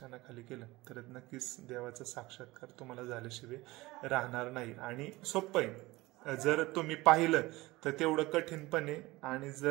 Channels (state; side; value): quieter; left; 20.2 dB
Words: केलं तर नक्कीच देवाचा साक्षात्कार तुम्हाला झाल्याशिवाय राहणार नाही. आणि सोपं आहे, जर तुम्ही पाहिलं तर तेवढं कठीणपणे, आणि